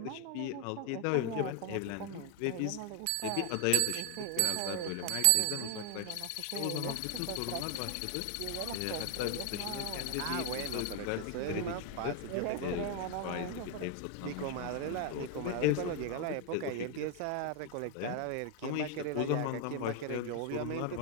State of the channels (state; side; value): different; both; correlation 0.00